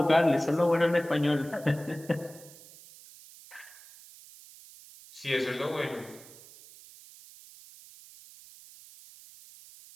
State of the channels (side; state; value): right; noise; hiss, 20 dB below the sound